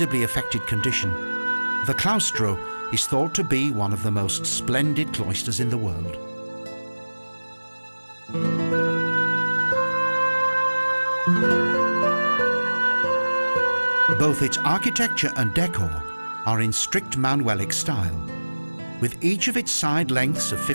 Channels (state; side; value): inverted; both; correlation -1.00